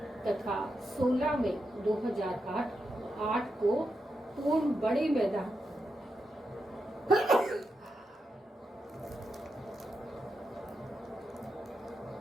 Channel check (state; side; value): normal; both; correlation 0.86